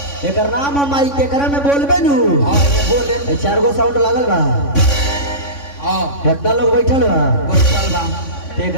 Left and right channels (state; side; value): late; right; 3.5 ms